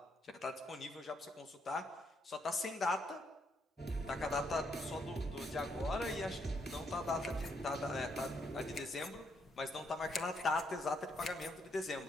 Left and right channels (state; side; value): normal; both; correlation 0.75